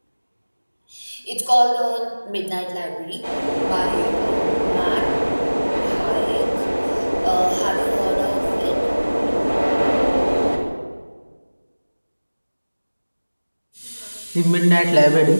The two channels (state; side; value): inverted; both; correlation -1.00